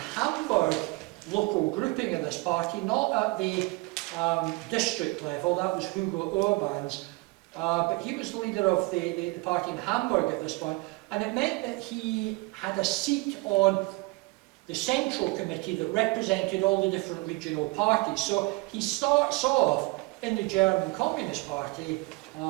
Hamburg local grouping of this party, not at the district level, that was Hugo Urban's, but he was the leader of the party in Hamburg at this point, and it meant that he had a seat on the central committee that represented all the different regional parties. So he starts off in the German Communist Party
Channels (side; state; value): left; quieter; 25.0 dB